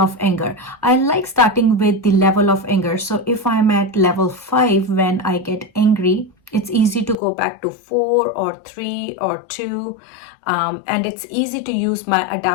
anger. I like starting with the level of anger. So if I'm at level 5 when I get angry, it's easy to go back to 4 or 3 or 2. And it's easy to use my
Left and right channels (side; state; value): right; drops out; at 7.2 s